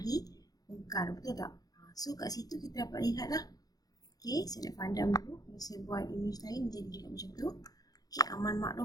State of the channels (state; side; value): late; right; 0.18 ms